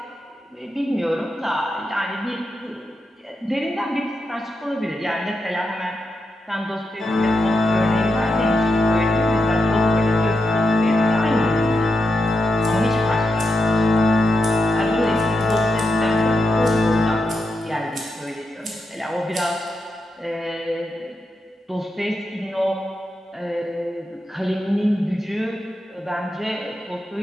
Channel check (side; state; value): both; normal; correlation 0.86